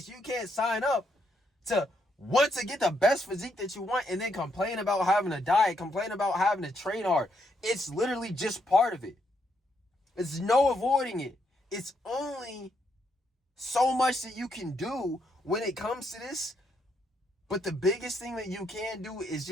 You can't sign up to want to get the best physique that you want and then complain about having a diet, complain about having to train hard. It's literally just part of it. It's no avoiding it. It's only so much that you can do when it comes to this. But the biggest thing that you can do is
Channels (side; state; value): both; normal; correlation 0.76